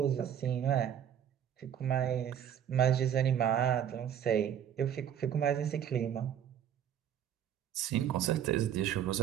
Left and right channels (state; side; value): quieter; left; 9.5 dB